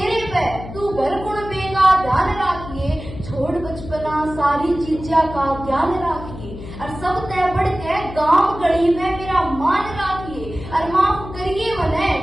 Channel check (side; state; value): left; noise; hum, 12 dB below the sound